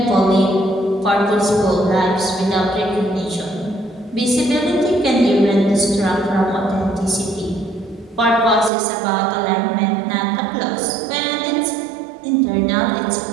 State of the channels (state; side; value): drops out; left; at 8.7 s